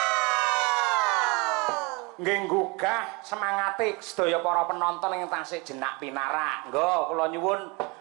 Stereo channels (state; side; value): quieter; left; 28.2 dB